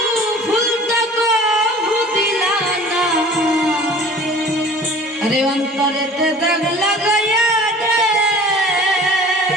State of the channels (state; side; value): normal; both; correlation 0.46